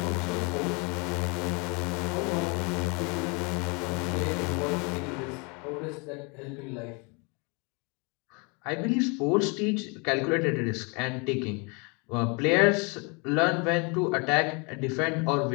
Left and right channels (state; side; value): quieter; right; 31.7 dB